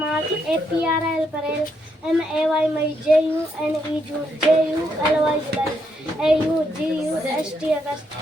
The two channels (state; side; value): normal; both; correlation 0.77